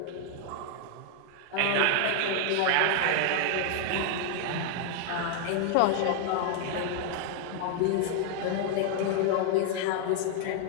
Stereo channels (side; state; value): both; different; correlation 0.00